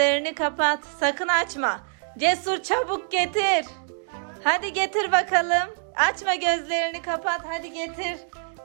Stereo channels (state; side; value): silent; left; digital silence